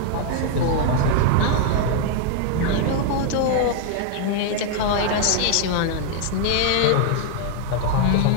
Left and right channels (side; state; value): both; different; correlation 0.00